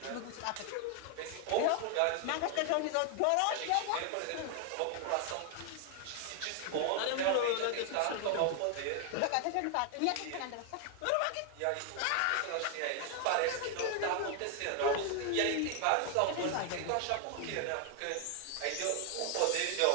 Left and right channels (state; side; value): different; both; correlation 0.00